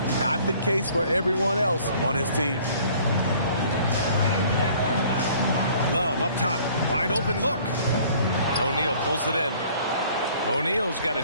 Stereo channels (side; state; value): both; inverted; correlation -0.55